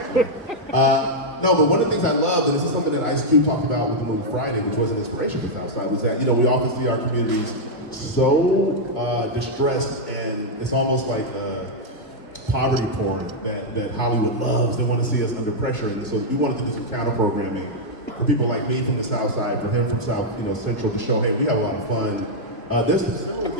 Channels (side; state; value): both; normal; correlation -0.03